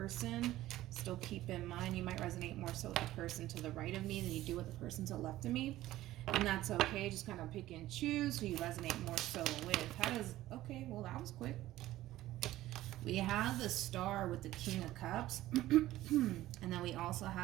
Still keep in mind, you might resonate more so with the person to the right of me than you do with the person to the left of me. And that's okay. Just kind of pick and choose who you resonate more so with. Okay, well that was quick. We have the Star with the King of Cups. And then we also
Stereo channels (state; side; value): quieter; left; 15.3 dB